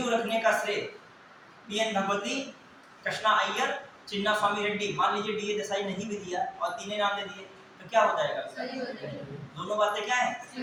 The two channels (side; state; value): both; identical; correlation 1.00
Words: रखने का श्रेय पीएन भगवती, कृष्णा अय्यर, चिन्ना स्वामी रेड्डी, मान लीजिए डीए देसाई नहीं भी दिया और तीनों नाम दे दिए तो क्या हो जाएगा? सही हो जाएगा। दोनों बातें क्या है?